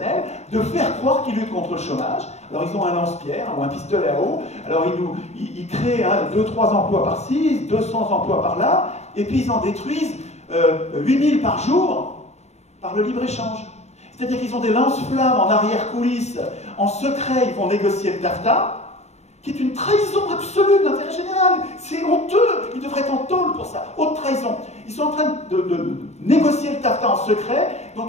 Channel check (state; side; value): late; right; 0.32 ms